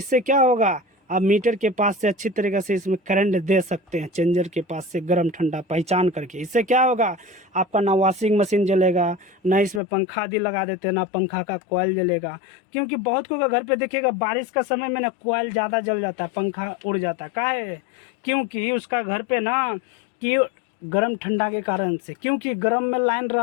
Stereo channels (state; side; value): drops out; right; at 9.8 s